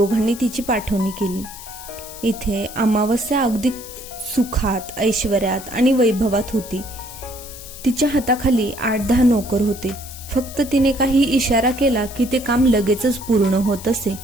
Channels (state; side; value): noise; left; hiss, 14 dB below the sound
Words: तिची पाठवणी केली। इथे अमावस्या अगदी सुखात, ऐश्वर्यात आणि वैभवात होती। तिच्या हाताखाली 8-10 नोकर होते। फक्त तिने काही इशारा केला की ते काम लगेचच पूर्ण होत असे।